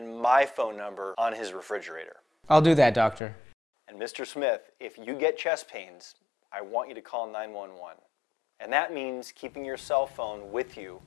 my phone number on his refrigerator. I'll do that, Doctor. And Mr. Smith, if you get chest pains, I want you to call 911. And that means keeping your cell phone with you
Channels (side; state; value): right; drops out; at 3.2 s